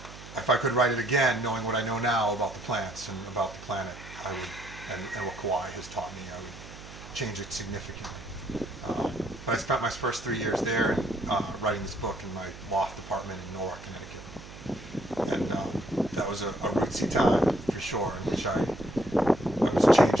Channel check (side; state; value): right; noise; hum, 16 dB below the sound